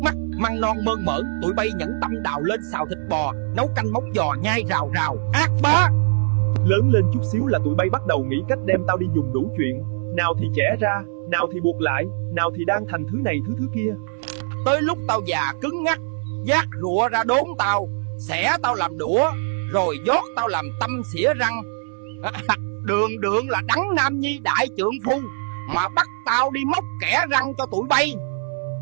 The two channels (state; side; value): silent; left; 62 dB below the other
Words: mắt, măng non mơn mởn, tụi bay nhẫn tâm đào lên xào thịt bò, nấu canh móng giò nhai rào rào, ác bá. Lớn lên chút xíu là tụi bay bắt đầu nghĩ cách đem tao đi dùng đủ chuyện. Nào thì chẻ ra, nào thì buộc lại, nào thì đan thành thứ này thứ kia. Tới lúc tao già cứng ngắc, vác rụa ra đốn tao, xẻ tao làm đũa, rồi dót tao làm tâm xỉa răng. Đường đường là Đấng Nam Nhi đại trượng phu mà bắt tao đi móc kẻ răng cho tụi bay.